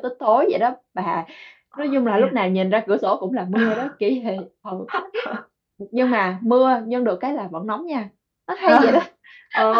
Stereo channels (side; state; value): both; identical; correlation 1.00